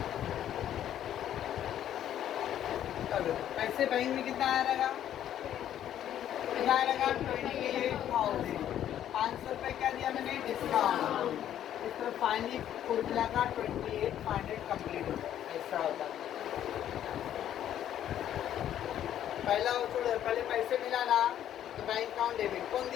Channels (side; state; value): right; quieter; 11.0 dB